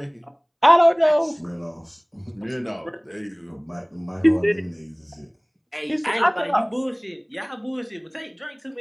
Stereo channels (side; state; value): both; identical; correlation 1.00